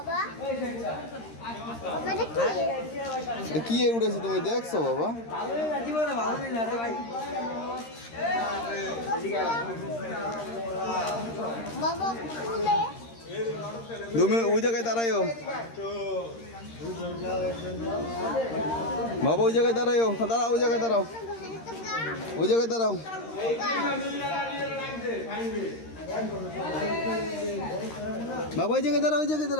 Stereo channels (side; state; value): right; late; 13 ms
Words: কি উঠেছে তুমি দেখছো বাবা? তুমি ওই জায়গায় দাঁড়াইও বাবা, ওই জায়গায় দাঁড়াইও। দাঁড়াও, ওই জায়গায় দাঁড়াও, ওই জায়গায় দাঁড়াও। বাবা ওই জায়গায় দাঁড়াও, ওই জায়গায়